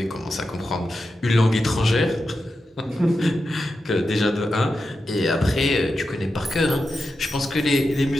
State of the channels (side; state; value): both; normal; correlation 0.89